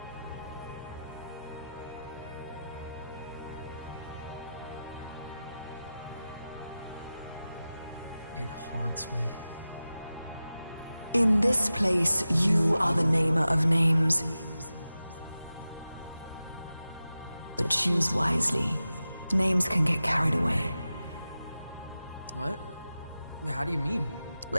It haunts me. In this place, you are the namer of names. But choose wisely. Names can get carried away. What? How do you mean?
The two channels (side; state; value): both; inverted; correlation -0.93